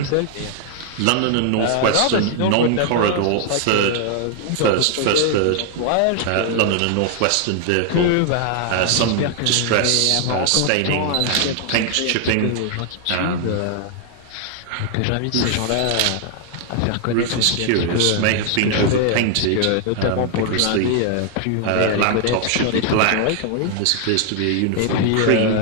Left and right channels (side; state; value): both; different; correlation 0.00